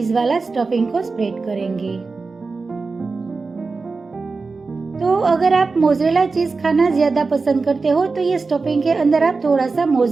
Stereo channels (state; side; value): quieter; left; 4.1 dB